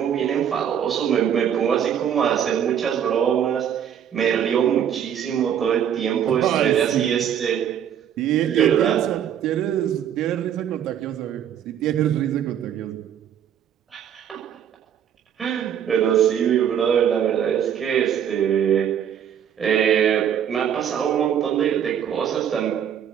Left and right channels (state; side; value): quieter; left; 9.2 dB